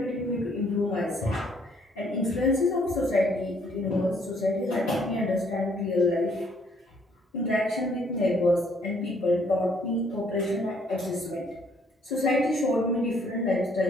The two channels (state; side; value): normal; both; correlation 0.65